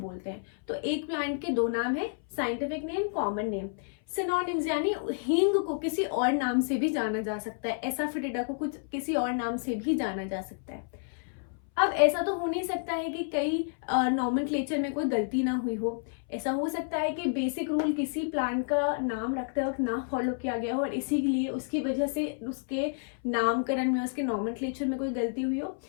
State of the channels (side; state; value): right; silent; 58 dB below the other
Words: हैं। तो एक प्लांट के दो नाम है, scientific name, common name. Synonyms यानी हींग को किसी और नाम से भी जाना जा सकता है, एसाफेटिडा को कुछ किसी और नाम से भी जाना जा सकता है। अब ऐसा तो हो नहीं सकता है कि कई नॉमेनक्लेचर में कोई गलती ना हुई हो। ऐसा हो सकता है कि बेसिक रूल किसी प्लांट का नाम रखते वक्त ना फॉलो किया गया हो और इसीलिए उसकी वजह से उसके नामकरण में, उसके नॉमेनक्लेचर में कोई गलती हुई हो।